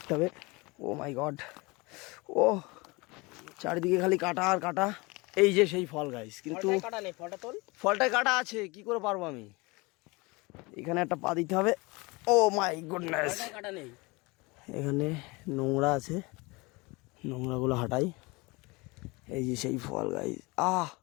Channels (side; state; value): right; quieter; 25.3 dB